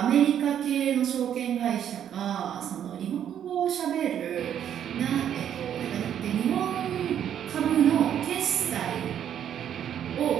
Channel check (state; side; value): quieter; left; 9.6 dB